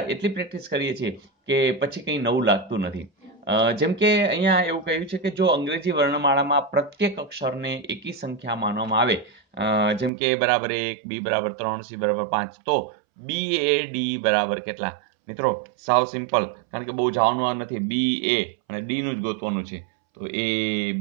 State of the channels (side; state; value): left; drops out; at 10.1 s